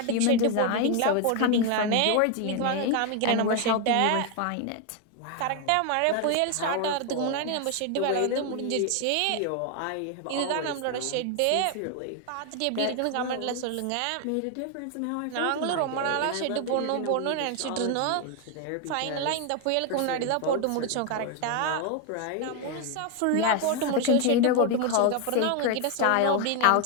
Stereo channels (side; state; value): both; different; correlation 0.01